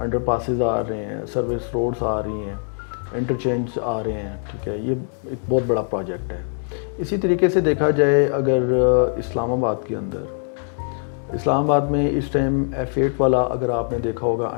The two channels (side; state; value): right; silent; 62 dB below the other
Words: پاسز آ رہے ہیں, سروس روڈز آ رہی ہیں, انٹرچینج آ رہے ہیں. ٹھیک ہے, یہ ایک بہت بڑا پروجیکٹ ہے. اسی طریقے سے دیکھا جائے اگر اسلام آباد کے اندر, اسلام آباد میں اس ٹائم F8 والا اگر آپ نے دیکھا ہوگا